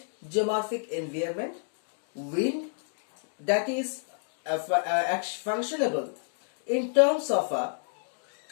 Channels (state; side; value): silent; right; digital silence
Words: geomorphic environment. Wind, that is functionable in terms of a